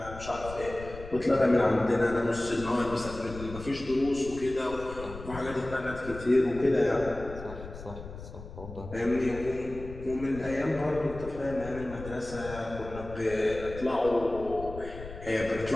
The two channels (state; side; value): noise; left; rumble, 13 dB below the sound